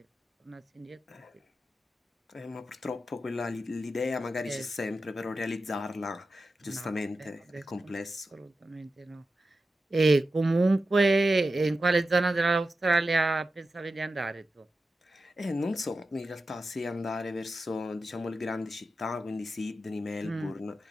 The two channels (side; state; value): both; normal; correlation 0.92